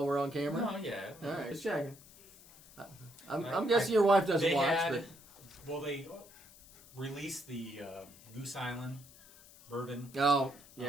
we're on camera? no, yeah. All right, just checking. I'm I- guessing your wife doesn't They watch, had, but well, they released the Goose Island bourbon. oh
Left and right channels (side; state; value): left; noise; hiss, 22 dB below the sound